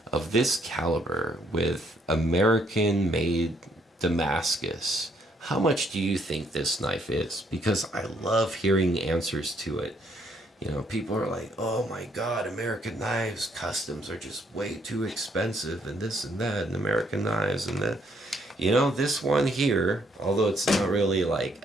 of this caliber with American-made Damascus how much do you think this knife is? Because I love hearing answers to it. You know, people are like, oh my God, American knives, customs are just way too expensive and this and that, and American knives and that. You know, this one here, although it's not really like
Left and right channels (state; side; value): normal; both; correlation 0.69